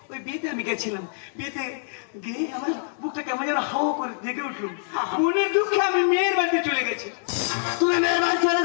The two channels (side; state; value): right; silent; digital silence